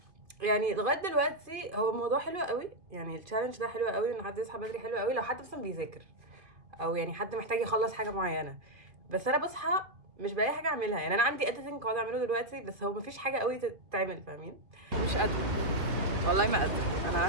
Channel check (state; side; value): late; left; 2.7 ms